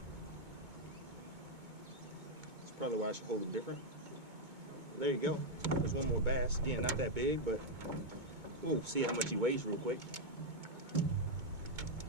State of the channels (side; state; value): left; late; 2.2 ms